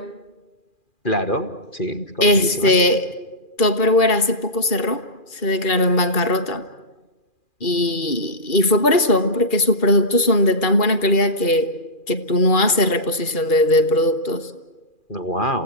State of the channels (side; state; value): right; late; 2.4 ms